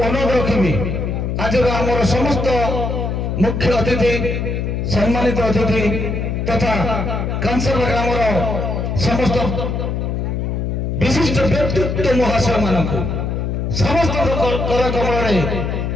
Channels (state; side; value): noise; left; hum, 2 dB below the sound